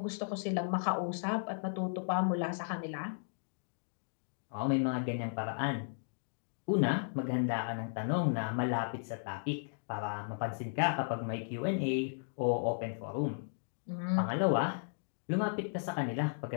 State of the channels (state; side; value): silent; right; digital silence